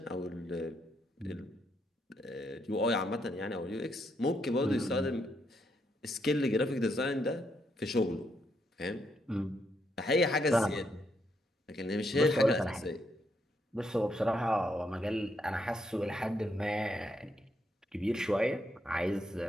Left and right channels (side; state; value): both; normal; correlation 0.77